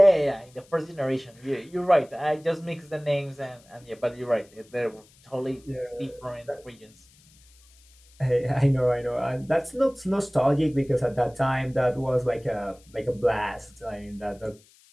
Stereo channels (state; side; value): noise; left; hiss, 29 dB below the sound